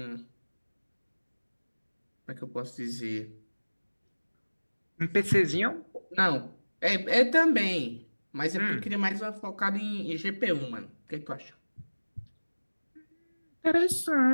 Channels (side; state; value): both; inverted; correlation -1.00